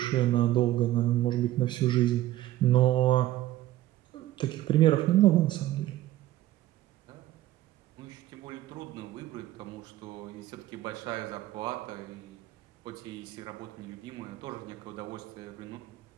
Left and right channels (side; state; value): left; quieter; 14.9 dB